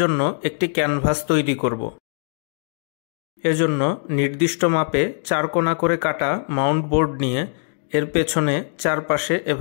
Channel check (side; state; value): right; silent; digital silence